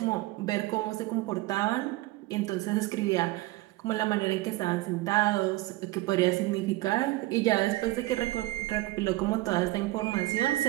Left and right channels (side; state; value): left; quieter; 18.9 dB